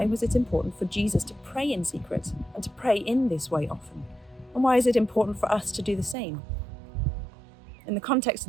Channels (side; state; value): left; drops out; at 6.2 s